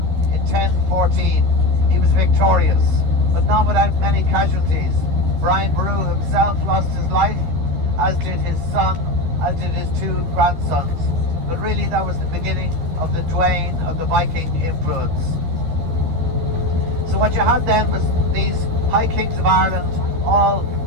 in 1014, he was victorious, but not without many casualties. Brian Boru himself lost his life, as did his son, as did his two grandsons. But really that was the beginning of the wane of the Viking influence. So what you had then was these high kings of Ireland all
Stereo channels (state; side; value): late; left; 12 ms